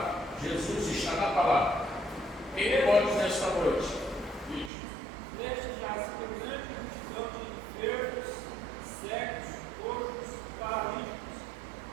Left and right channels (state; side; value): drops out; left; at 4.7 s